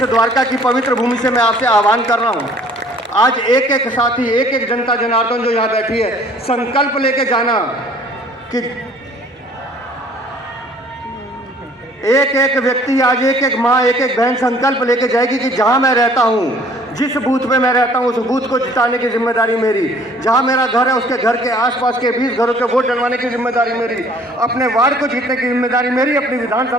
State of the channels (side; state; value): both; normal; correlation 0.55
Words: द्वारका की पवित्र भूमि से मैं आपसे आह्वान कर रहा हूँ, आज एक एक साथी, एक एक जनता जनार्दन जो यहाँ बैठी है, संकल्प लेके जाना कि एक एक व्यक्ति, आज एक एक माँ, एक एक बहन संकल्प लेके जाएगी कि जहाँ मैं रहता हूँ, जिस बूथ पे मैं रहता हूँ, उस बूथ को जिताने की जिम्मेदारी मेरी। जहाँ मेरा घर है उसके घर के आसपास के 20 घरों के वोट डलवाने की जिम्मेदारी मेरी। अपने वार्ड को जीतने की जिम्मेदारी मेरी, अपनी